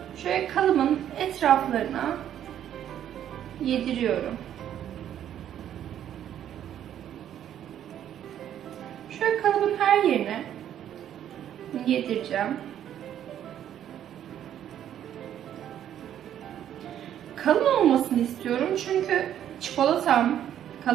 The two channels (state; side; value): quieter; left; 10.5 dB